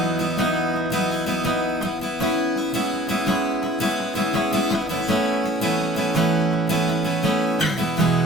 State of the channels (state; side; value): normal; both; correlation 0.51